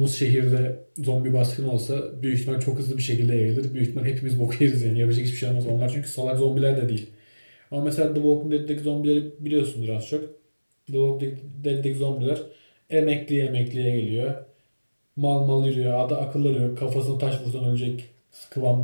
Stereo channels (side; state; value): both; inverted; correlation -1.00